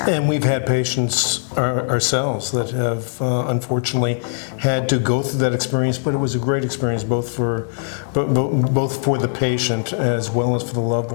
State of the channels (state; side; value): silent; right; 57 dB below the other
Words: And we've had patients ourselves that have unfortunately had to go through that experience, but it was a great experience both for the patient as well as for the loved